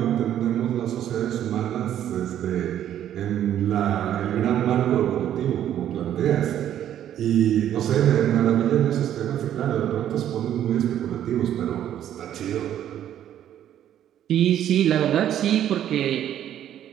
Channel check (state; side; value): quieter; left; 10.9 dB